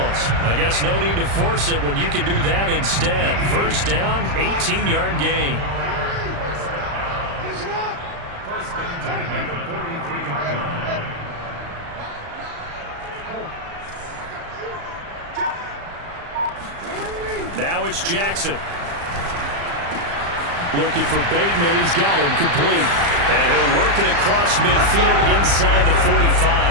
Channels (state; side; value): late; left; 35 ms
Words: I guess no need to force it when you can do that instead. First down, 18-yard gain. First and 10 at the 43-yard line. Now it's Jackson. Looking for Bateman. He's got him complete. And he'll work it across midfield inside the